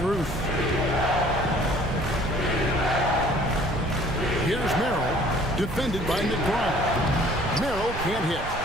Here's Merrill, defended by McBride. Merrill can't hit.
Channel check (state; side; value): noise; right; rumble, 10 dB below the sound